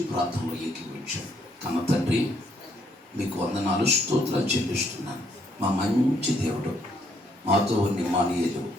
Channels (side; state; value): both; normal; correlation 0.71